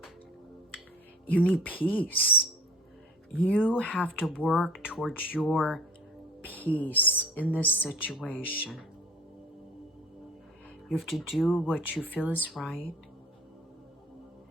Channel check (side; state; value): both; normal; correlation 0.44